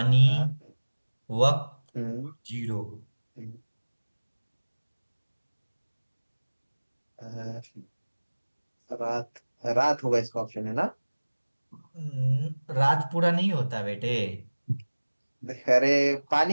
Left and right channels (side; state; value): both; inverted; correlation -1.00